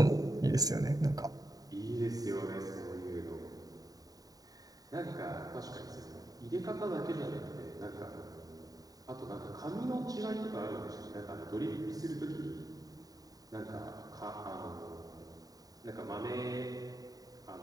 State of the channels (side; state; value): left; late; 0.18 ms